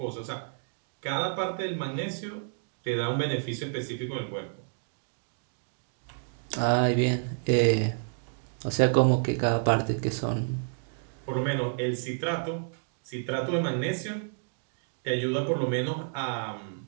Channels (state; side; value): silent; left; digital silence